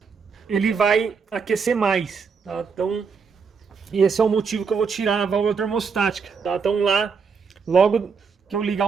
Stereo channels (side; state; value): left; quieter; 5.6 dB